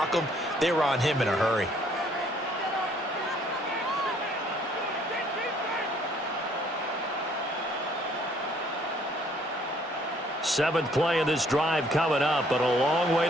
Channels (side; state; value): both; normal; correlation 0.62